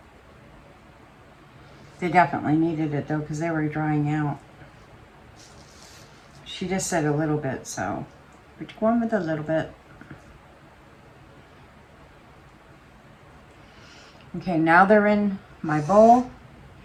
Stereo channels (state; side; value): identical; both; correlation 1.00